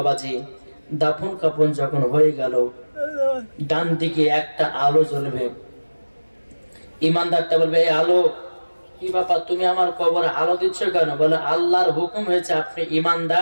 দাফন কাফন যখন হয়ে গেল, ডান দিকে একটা আলো জ্বলবে, ইমানদারটা বলবে এই আলো কি ব্যাপার, তুমি আমার কবরে আলো দিচ্ছ কেন? বলে আল্লাহর হুকুম হয়েছে আপনি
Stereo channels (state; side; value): inverted; both; correlation -1.00